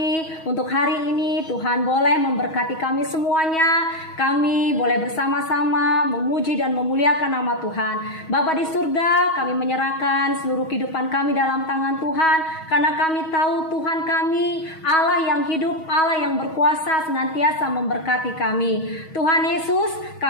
untuk hari ini. Tuhan boleh memberkati kami semuanya. Kami boleh bersama-sama memuji dan memuliakan nama Tuhan. Bapa di surga, kami menyerahkan seluruh kehidupan kami dalam tangan Tuhan. Karena kami tahu Tuhan kami, Allah yang hidup, Allah yang berkuasa senantiasa memberkati kami. Tuhan Yesus,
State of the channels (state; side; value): late; right; 6.3 ms